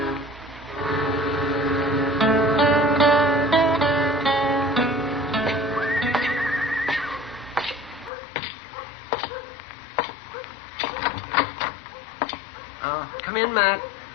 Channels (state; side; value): drops out; right; at 8.1 s